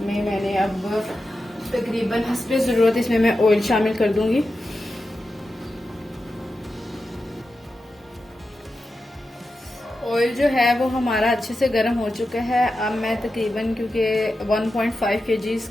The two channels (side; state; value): both; normal; correlation 0.91